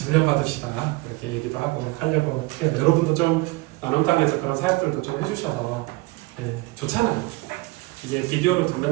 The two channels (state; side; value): quieter; left; 22.9 dB